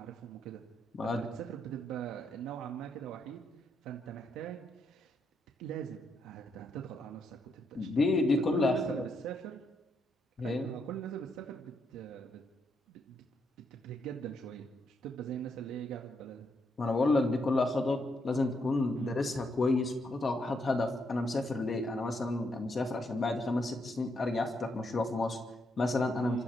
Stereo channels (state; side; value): normal; both; correlation 0.78